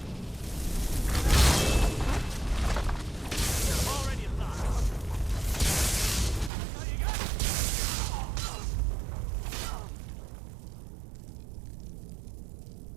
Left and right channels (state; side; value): drops out; left; at 6.5 s